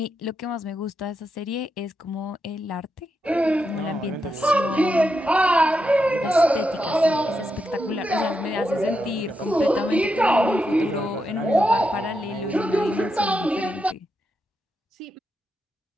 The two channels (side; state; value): both; normal; correlation 0.85